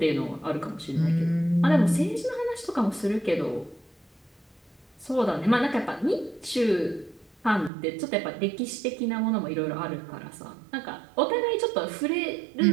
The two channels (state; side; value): drops out; left; at 7.7 s